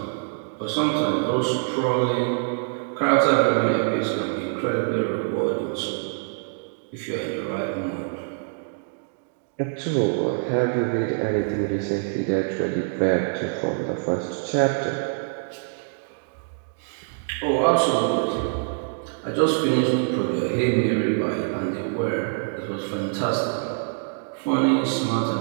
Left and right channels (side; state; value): left; silent; digital silence